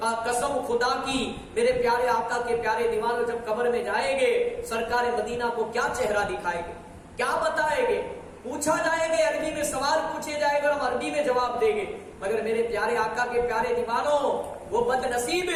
قسم خدا کی، میرے پیارے آقا کے پیارے دیوانوں، جب قبر میں جائیں گے، سرکار مدینہ کو کیا چہرہ دکھائے گے، کیا بتائیں گے؟ پوچھا جائے گے، عربی میں سوال پوچھے جائے گا، ہم عربی میں جواب دیں گے. مگر میرے پیارے آقا کے پیارے دیوانوں، وہ بد نصیب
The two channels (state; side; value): identical; both; correlation 1.00